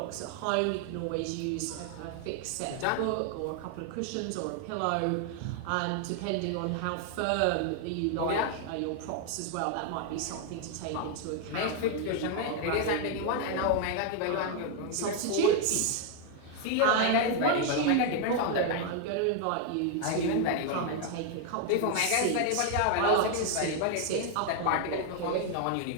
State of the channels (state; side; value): different; both; correlation 0.00